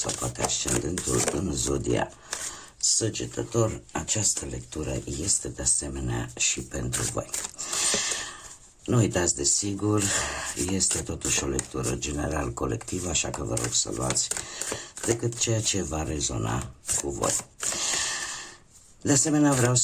poate ascendentul în Zodia Săgetător, această lectură este de asemenea și pentru voi. Nu uitați, desigur, este totuși o lectură general colectivă, așa că vă rog să luați decât ceea ce va rezona cu voi. De asemenea, vreau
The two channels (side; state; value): both; identical; correlation 1.00